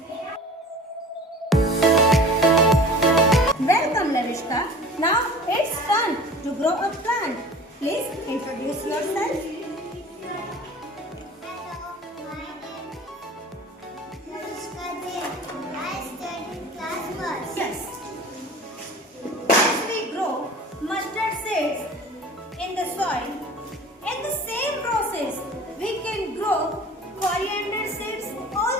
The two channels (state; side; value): normal; both; correlation 0.42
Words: Welcome Lavishka. Now it's time to grow a plant. Please introduce yourself. Hello, my name is Lavishka Jain. I study in class first. Yes. As we grow mustard seeds in the